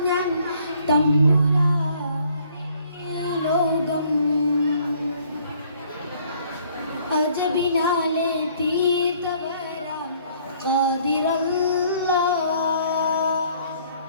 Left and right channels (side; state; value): both; inverted; correlation -0.62